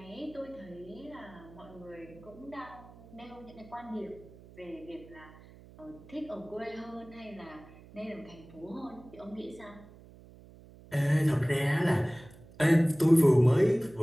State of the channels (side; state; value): right; noise; hum, 21 dB below the sound